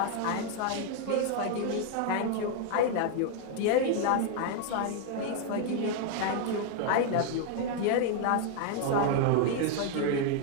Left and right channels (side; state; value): both; different; correlation 0.00